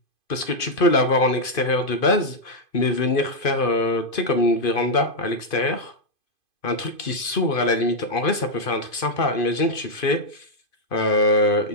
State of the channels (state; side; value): late; right; 2.5 ms